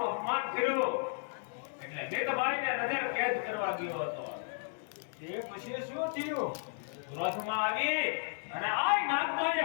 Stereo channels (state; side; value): silent; right; digital silence